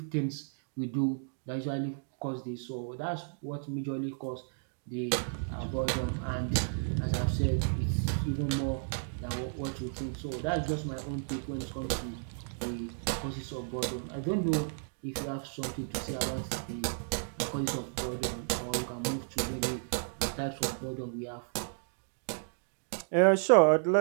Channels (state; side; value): silent; left; digital silence